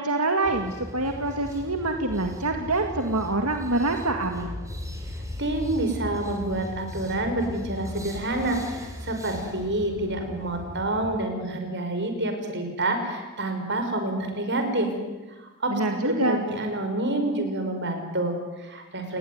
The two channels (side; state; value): both; normal; correlation 0.03